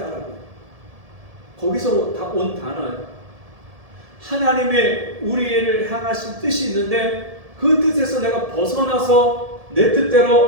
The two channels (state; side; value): late; left; 1.7 ms